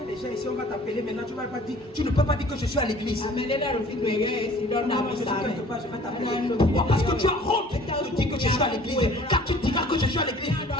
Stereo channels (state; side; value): normal; both; correlation 0.51